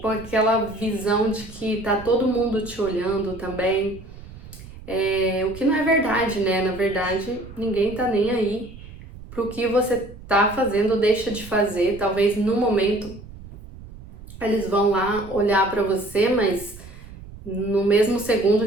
com aquela visão de que tá todo mundo te olhando também, o que não é verdade, né? Na verdade, ninguém tá nem aí pro que você tá fazendo ou deixa de fazer. Talvez no momento eles vão lá olhar para você, mas no mesmo segundo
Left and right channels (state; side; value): noise; right; rumble, 16 dB below the sound